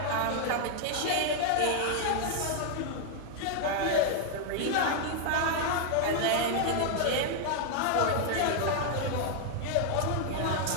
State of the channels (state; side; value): different; both; correlation 0.00